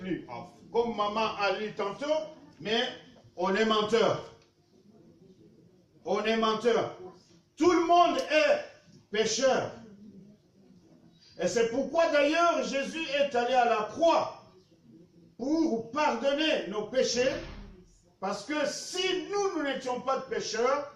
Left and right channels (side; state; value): both; identical; correlation 1.00